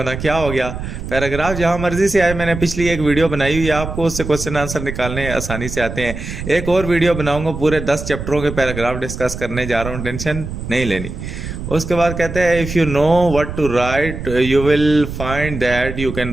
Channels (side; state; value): right; noise; rumble, 7 dB below the sound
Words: क्या हो गया, पैराग्राफ जहां मर्जी से आए। मैंने पिछली एक वीडियो बनाई हुई है, आपको उससे क्वेश्चन आंसर निकालने आसानी से आते हैं। एक और वीडियो बनाऊंगा, पूरे 10 चैप्टरों के पैराग्राफ डिस्कस करने जा रहा हूँ, टेंशन नहीं लेनी। उसके बाद कहते हैं if you know what to write you will find that you can